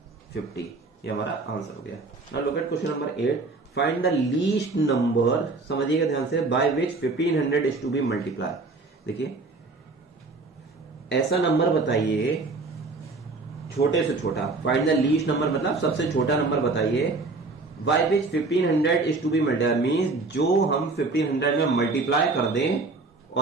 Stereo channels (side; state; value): left; quieter; 3.6 dB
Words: ये हमारा आंसर हो गया। Now look at question number 8, find the least number, समझिएगा ध्यान से, by which 1500 is to be multiply. देखिए ऐसा नंबर बताइए छोटे से छोटा, फाइंड द लीस्ट नंबर मतलब सबसे छोटा नंबर बताइए, by which 1500 is to be multiply, means जो हम 1500 में मल्टीप्लाई कर दें